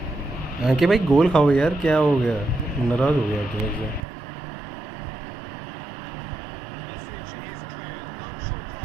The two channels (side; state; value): left; drops out; at 4.0 s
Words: कि भाई गोल खाओ यार क्या हो गया नाराज हो गया तुम्हें से The message is clear. No short